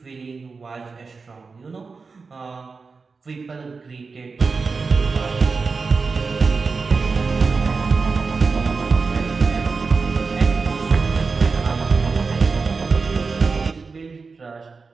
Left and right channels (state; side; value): quieter; left; 4.5 dB